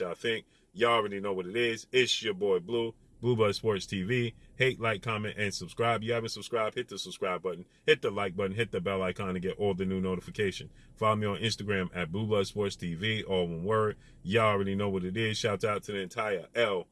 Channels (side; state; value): both; identical; correlation 1.00